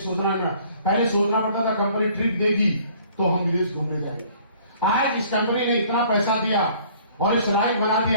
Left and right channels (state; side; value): inverted; both; correlation -0.56